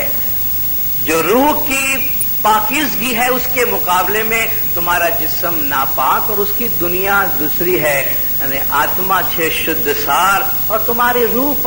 جو روح کی پاکیزگی ہے اس کے مقابلے میں تمہارا جسم ناپاک اور اس کی دنیا دوسری ہے. یعنی آتما چھے شدھ سار اور تمہاری روح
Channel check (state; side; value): noise; right; rumble, 13 dB below the sound